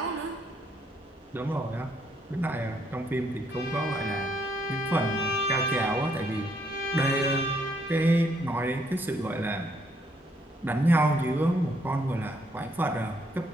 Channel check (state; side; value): normal; both; correlation 0.71